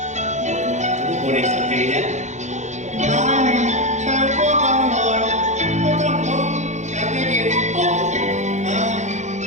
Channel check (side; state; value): left; late; 0.34 ms